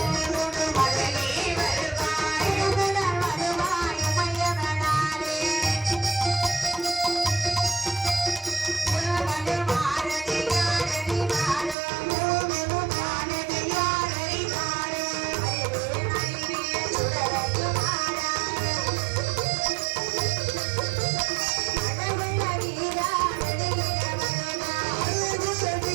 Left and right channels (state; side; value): drops out; left; at 11.8 s